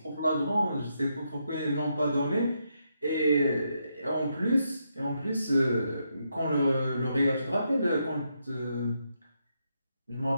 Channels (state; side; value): inverted; both; correlation -0.80